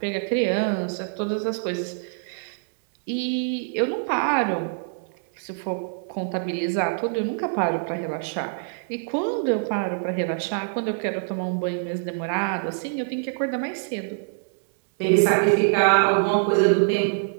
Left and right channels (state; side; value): silent; left; 62 dB below the other